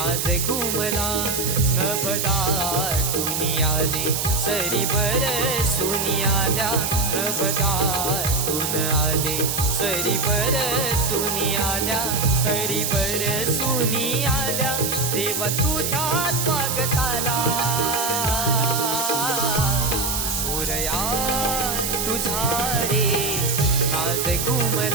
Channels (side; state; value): right; noise; hiss, 1 dB below the sound